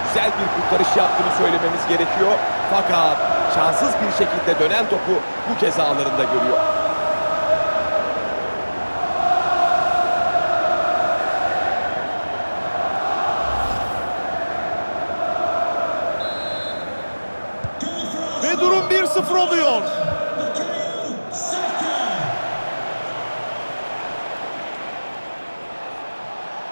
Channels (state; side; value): inverted; both; correlation -1.00